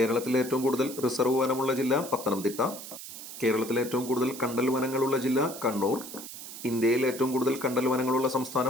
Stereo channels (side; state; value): right; noise; hiss, 12 dB below the sound